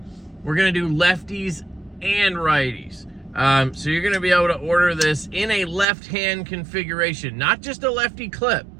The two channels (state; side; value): drops out; left; at 5.9 s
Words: we're gonna do lefties and righties. So you're gonna be able to order this in a left hand configuration, not just a lefty clip,